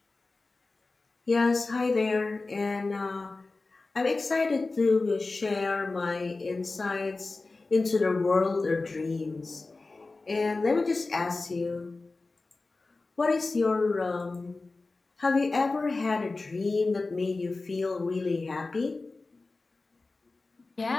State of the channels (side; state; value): right; quieter; 3.5 dB